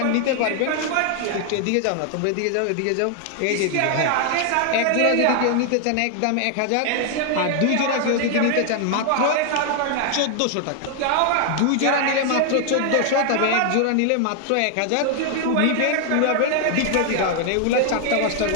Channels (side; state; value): both; different; correlation 0.00